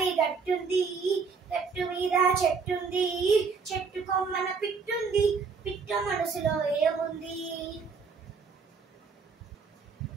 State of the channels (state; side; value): quieter; left; 5.2 dB